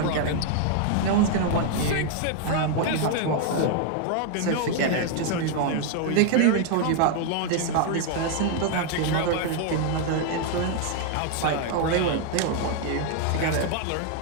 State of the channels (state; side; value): different; both; correlation 0.00